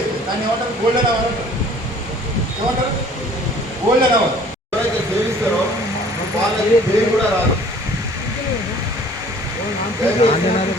దాన్ని ఏమంటారు? గోల్డెన్ అవర్ అంటారు. ఏమంటారు? Golden hour. ఎవరైతే సేవిస్తారో వాళ్ళకి పేరు కూడా రాదు.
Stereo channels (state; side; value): normal; both; correlation 0.52